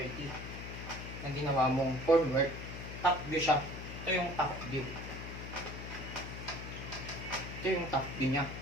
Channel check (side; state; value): left; noise; hum, 9 dB below the sound